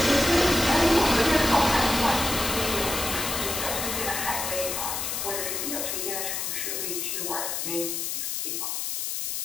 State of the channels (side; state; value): left; noise; hiss, 2 dB below the sound